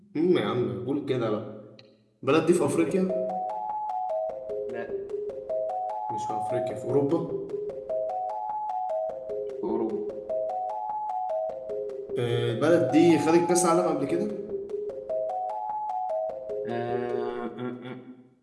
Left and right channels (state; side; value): identical; both; correlation 1.00